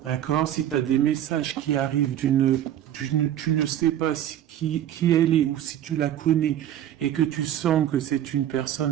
D'accord? Si tu as des messages qui arrivent tu ne sais pas qui elle est ou si tu la connais et que tu sens que c'est une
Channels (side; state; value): left; quieter; 11.3 dB